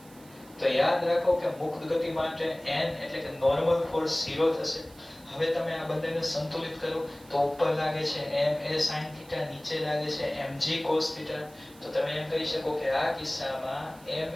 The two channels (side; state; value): right; noise; hiss, 24 dB below the sound